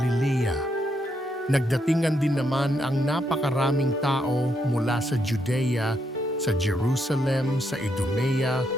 Nagdatingan din naman ang napakaraming tao mula sa Judea, sa Jerusalem, sa Idumea,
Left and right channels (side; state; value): both; normal; correlation 0.78